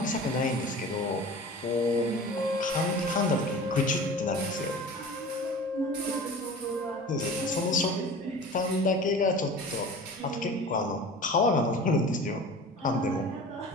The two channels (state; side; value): normal; both; correlation 0.38